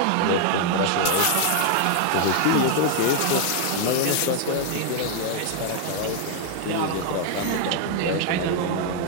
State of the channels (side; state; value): both; different; correlation 0.00